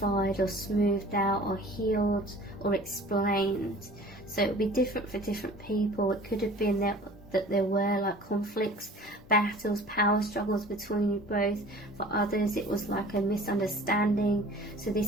or smoothed out or healed or explained. So it would be different for different people. It could have been that there were like conflicts, battles, power struggles between you both. For others it was like a misunderstanding. So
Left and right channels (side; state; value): both; normal; correlation 0.45